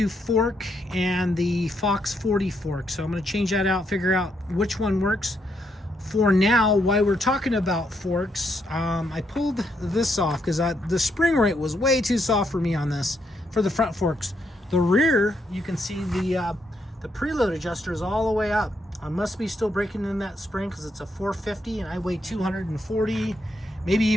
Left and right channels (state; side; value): normal; both; correlation 0.77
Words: fork and the Fox 40 fork. So I'm going to change that out, figure out which one works. For now, while we're talking about forks, I pulled this off because the spring rate was way too soft for me on this, for the front forks. The rear, you can see the preload adjuster is all the way up. I must be still breaking in that spring because it's a 450 and I weigh 240, maybe